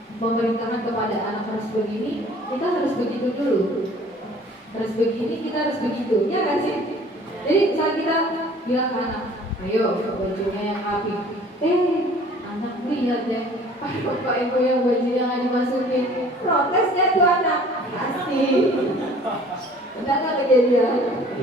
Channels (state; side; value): normal; both; correlation 0.51